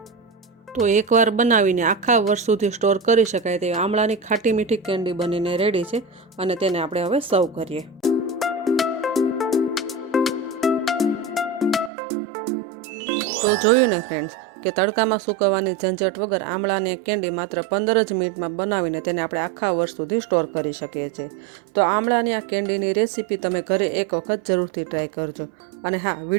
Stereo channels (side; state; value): left; drops out; at 11.9 s